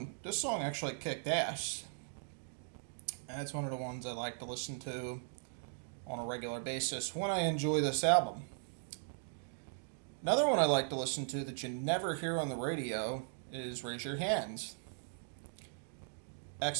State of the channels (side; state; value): left; silent; digital silence